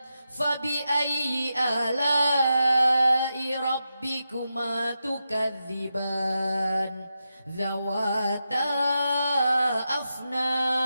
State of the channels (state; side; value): inverted; both; correlation -0.88